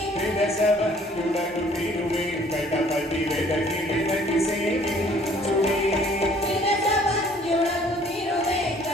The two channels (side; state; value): both; normal; correlation 0.57